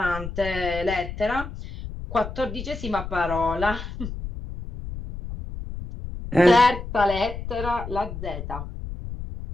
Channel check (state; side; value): noise; left; rumble, 9 dB below the sound